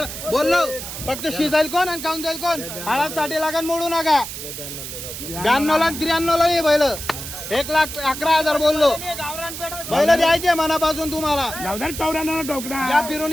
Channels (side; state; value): right; noise; hiss, 8 dB below the sound